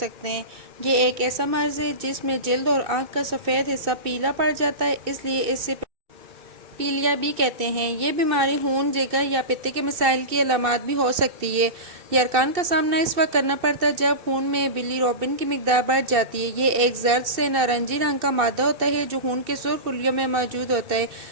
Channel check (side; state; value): left; late; 2.6 ms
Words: ہیں۔ یہ ایک ایسا مرض ہے جس میں جلد اور آنکھ کا سفید حصہ پیلا پڑ جاتا ہے، اس لیے اسے پیلیا بھی کہتے ہیں۔ یہ بیماری خون، جگر یا پتے کے مسائل کی علامات بھی ہو سکتی ہے۔ یرقان کا سامنا اس وقت کرنا پڑتا ہے جب خون میں بلی روبن کی مقدار بڑھ جاتی ہے۔ یہ ایک زرد سے نارنجی رنگ کا مادہ ہوتا ہے جو خون کے سرخ خلیوں میں موجود ہوتا ہے۔